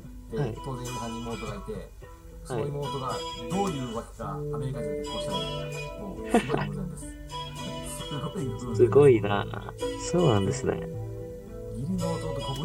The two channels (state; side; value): identical; both; correlation 1.00